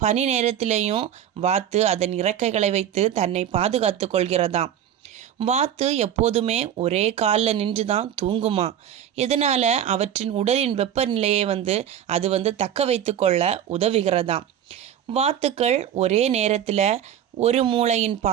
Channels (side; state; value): left; quieter; 10.0 dB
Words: பனி நேரத்திலேயும் வாத்து அதன் இறக்கைகளை வைத்து தன்னை பாதுகாத்து கொள்கிறதாம். வாத்து எப்போதுமே ஒரே காலில் நின்று தான் தூங்குமா. இதனால் அவற்றின் உடலின் வெப்பநிலையை அது தக்க வைத்து கொள்ள உதவுகிறதாம். வாத்துக்கள் ஒரே நேரத்தில் ஒரு மூளையின்